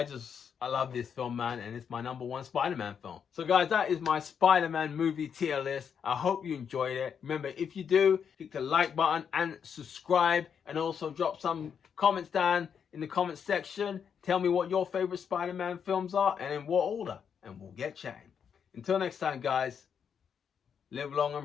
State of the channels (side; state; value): right; quieter; 7.3 dB